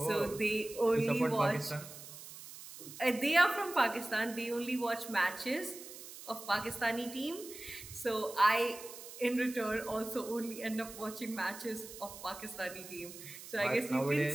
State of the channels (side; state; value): right; noise; hiss, 14 dB below the sound